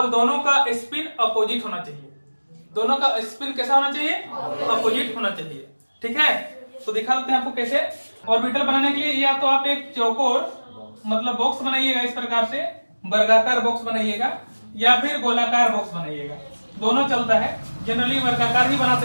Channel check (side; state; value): both; inverted; correlation -1.00